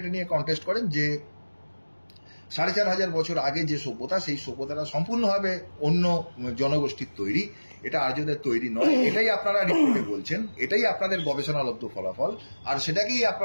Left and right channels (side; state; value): both; inverted; correlation -1.00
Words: নিয়ে কন্টেস্ট করেন যে 4500 বছর আগে যে সভ্যতা, সেই সভ্যতাটা সম্পূর্ণভাবে অন্য জনগোষ্ঠীর তৈরি, এটা আর্যদের তৈরি নয়। এটাই আপনারা রিপোর্টে বলছেন, এটাই আপনাদের গবেষণালব্ধ ফলাফল, আর সেটাকেই